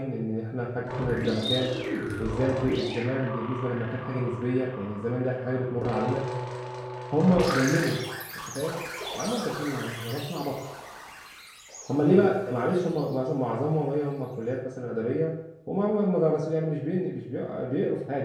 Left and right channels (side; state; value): both; identical; correlation 1.00